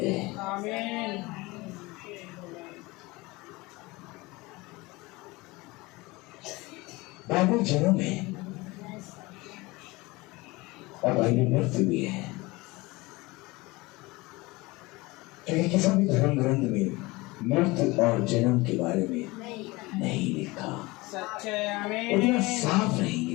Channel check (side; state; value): right; quieter; 22.5 dB